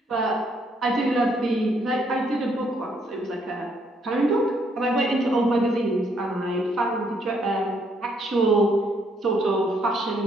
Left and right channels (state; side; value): normal; both; correlation 0.71